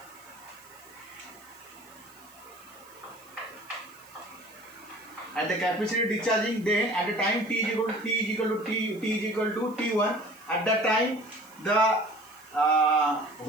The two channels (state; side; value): noise; right; hiss, 24 dB below the sound